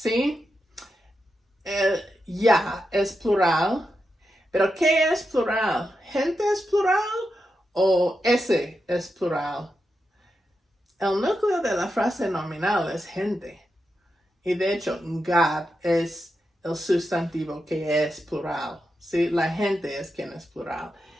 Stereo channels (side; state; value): both; normal; correlation 0.87